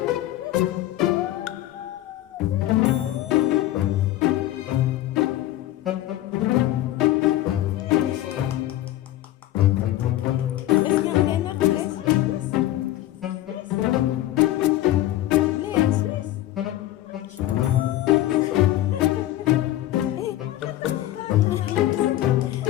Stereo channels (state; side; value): quieter; right; 14.4 dB